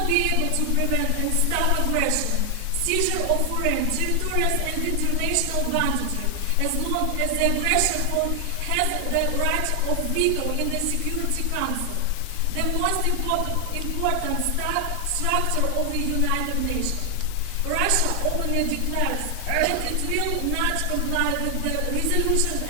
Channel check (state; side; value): different; both; correlation 0.00